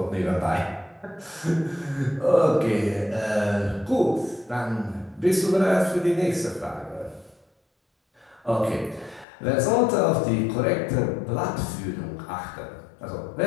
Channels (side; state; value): right; drops out; at 9.2 s